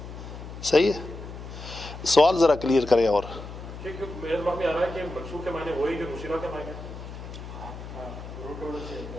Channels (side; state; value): left; noise; hum, 11 dB below the sound